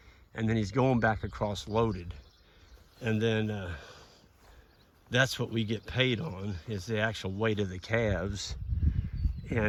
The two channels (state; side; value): identical; both; correlation 1.00